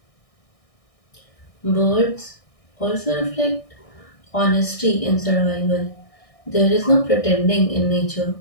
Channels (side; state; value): right; late; 1.6 ms